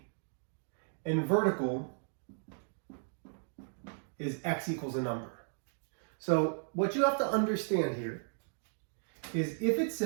and vertical is x equals a number. So what you have to understand here is if it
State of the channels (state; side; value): silent; left; digital silence